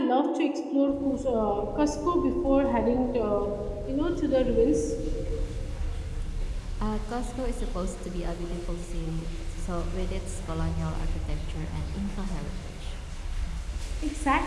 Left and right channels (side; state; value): both; identical; correlation 1.00